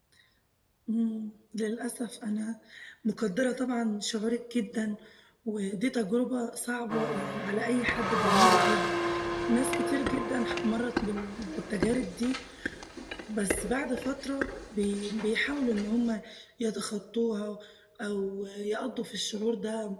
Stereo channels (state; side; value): identical; both; correlation 1.00